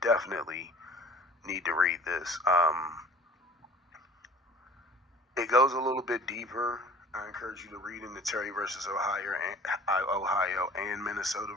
need to read this. It goes a little bit deeper. I encourage you to read into Terry versus Ohio and Minnesota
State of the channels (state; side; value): normal; both; correlation 0.46